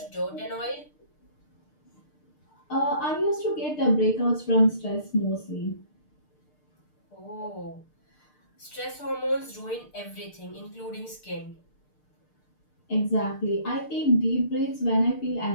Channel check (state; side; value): late; right; 6.6 ms